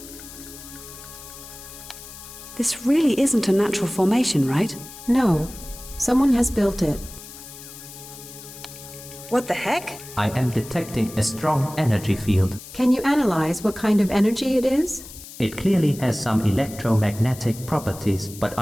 This really isn't a natural formation, right? No, someone has built it. What the heck? I am detecting a strong energy field. Can you analyze what kind of energy it is? It clearly has some electromagnetic properties, but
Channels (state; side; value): noise; left; hiss, 15 dB below the sound